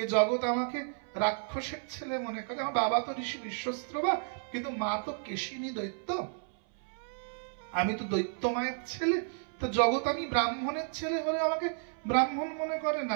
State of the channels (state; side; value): silent; left; 56 dB below the other